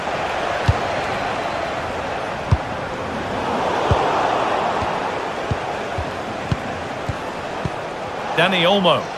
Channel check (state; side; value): identical; both; correlation 1.00